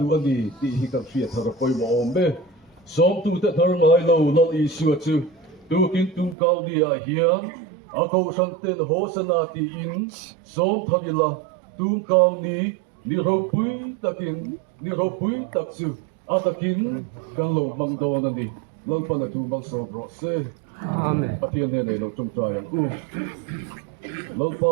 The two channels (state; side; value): drops out; left; at 6.4 s